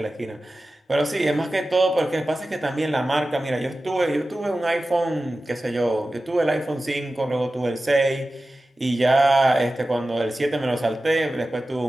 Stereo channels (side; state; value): both; normal; correlation 0.95